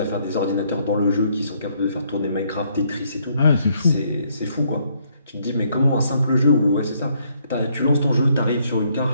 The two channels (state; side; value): inverted; both; correlation -0.70